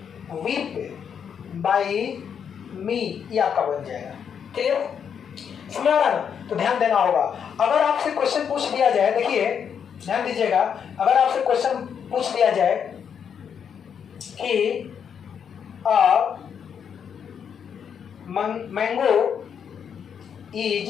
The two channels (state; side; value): quieter; right; 7.6 dB